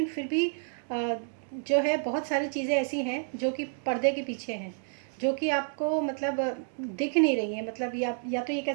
फिर भी जो है बहुत सारी चीज़ें ऐसी हैं जो कि पर्दे के पीछे हैं, जो कि आपको मतलब दिख नहीं रही हैं। मतलब या तो ये कह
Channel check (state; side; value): silent; left; 58 dB below the other